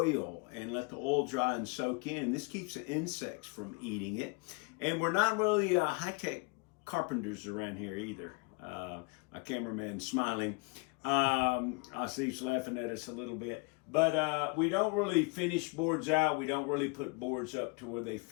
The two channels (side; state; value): right; quieter; 29.9 dB